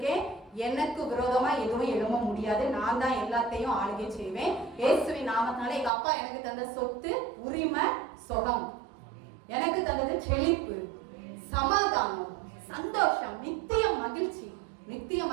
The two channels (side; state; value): left; drops out; at 5.9 s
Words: எனக்கு விரோதமா எதுவும் எழும்ப முடியாது, நான் தான் எல்லாத்தையும் ஆளுகை செய்வேன். இயேசுவின் நாமத்தினால எங்க அப்பா எனக்கு தந்த சொத்து, உரிமை, சுகம், எனக்கு தந்தது செழிப்பு, சமாதானம், சந்தோஷம், நித்திய மகிழ்ச்சி. நித்திய